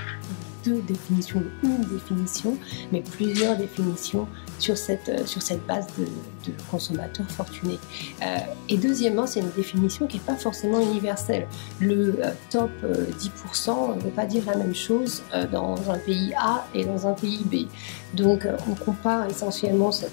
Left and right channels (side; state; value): right; silent; digital silence